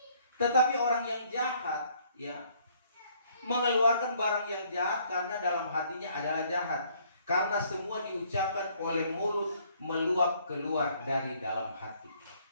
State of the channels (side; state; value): both; inverted; correlation -0.63